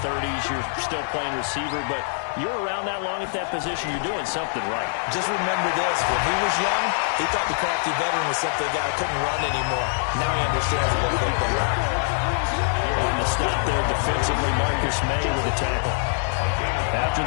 30s, you're still playing receiver, but you're around that long at that position, you're doing something right. Just remember this, when he was young, he thought the crafty veteran was simply a guy who couldn't run anymore. Now he understands a little bit better. On the stop there defensively, Marcus May with a tackle. After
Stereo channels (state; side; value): silent; right; digital silence